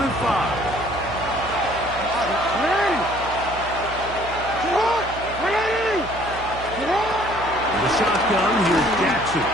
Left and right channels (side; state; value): right; noise; hum, 13 dB below the sound